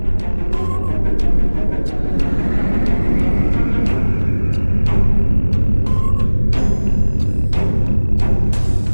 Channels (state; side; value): inverted; both; correlation -1.00